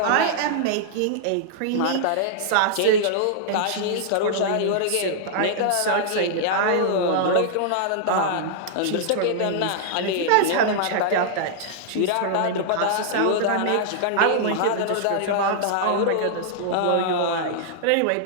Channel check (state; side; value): different; both; correlation -0.01